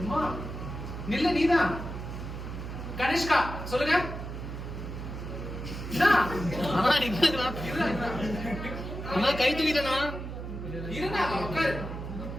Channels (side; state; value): right; noise; hum, 7 dB below the sound